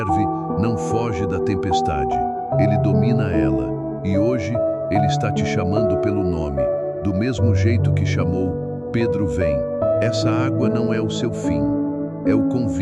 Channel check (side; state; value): both; identical; correlation 1.00